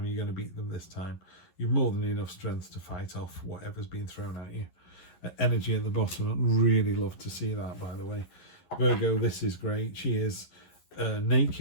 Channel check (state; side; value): late; right; 11 ms